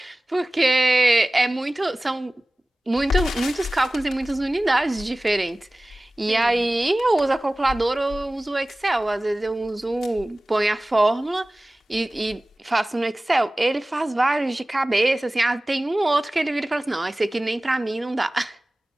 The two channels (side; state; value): both; normal; correlation 0.98